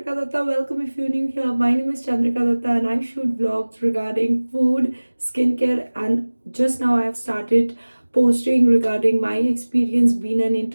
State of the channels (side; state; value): both; inverted; correlation -1.00